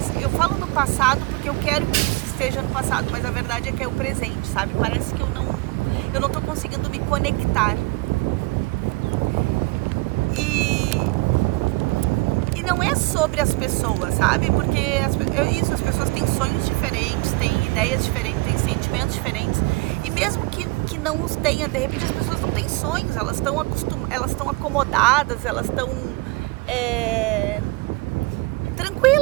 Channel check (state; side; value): quieter; left; 24.4 dB